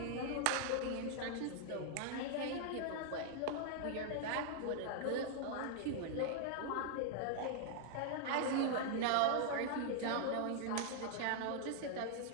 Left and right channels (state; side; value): different; both; correlation -0.01